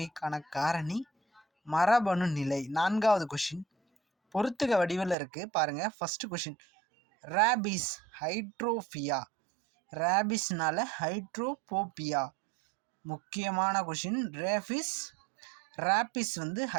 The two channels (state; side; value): drops out; left; at 5.2 s